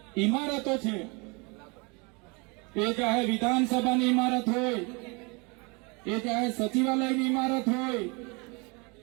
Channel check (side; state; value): left; quieter; 30.0 dB